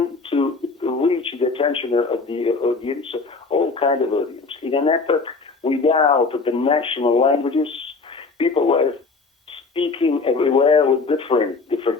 to reach the attention of the audience, all kind of audience. In an epoch without the national languages, people were speaking everywhere with different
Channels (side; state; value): right; quieter; 4.2 dB